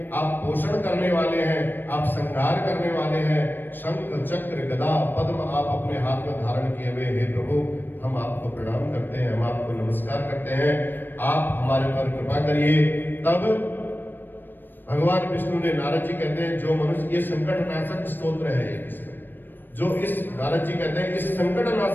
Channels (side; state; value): right; late; 0.093 ms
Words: आप पोषण करने वाले हैं, आप संहार करने वाले हैं। शंख चक्र गदा पद्म आप अपने हाथ में धारण किए हुए। हे प्रभु हम आपको प्रणाम करते हैं, हम आपको नमस्कार करते हैं, आप हमारे पर कृपा करिए। तब भगवान विष्णु ने, नारद जी कहते हैं जो मनुष्य, ये संकट नाशक स्तोत्र है इसमें, जो इस नारद जी कहते हैं इस संकट